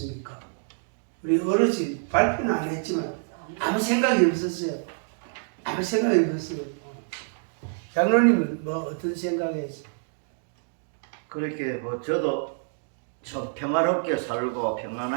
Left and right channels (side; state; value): left; silent; digital silence